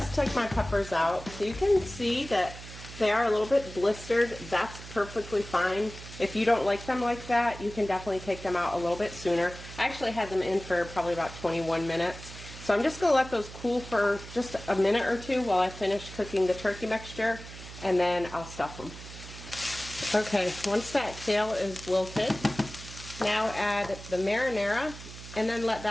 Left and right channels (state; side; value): noise; right; hum, 14 dB below the sound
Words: took my peppers out, so you can see that they are a little bit blistered. That's perfectly fine. If you don't like them like that, you can definitely take them out a little bit sooner. I actually had them in for probably about 21 minutes. So I'm just going to let those cool for just a minute or two while I finish cooking the turkey mixture, and then I'll stuff them. Okay, once that kale is wilted, now add the marinara, and then let